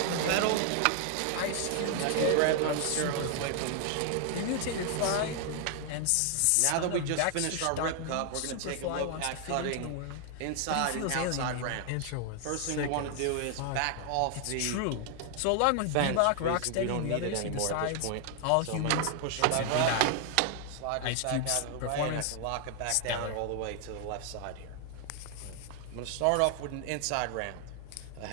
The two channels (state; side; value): different; both; correlation 0.00